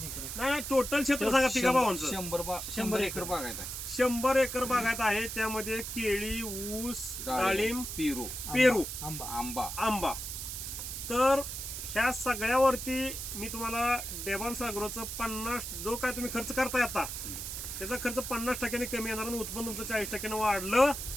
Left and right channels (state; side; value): noise; right; hiss, 6 dB below the sound